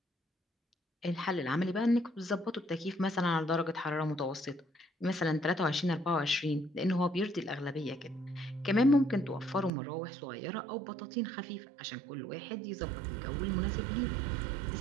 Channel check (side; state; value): left; drops out; at 9.7 s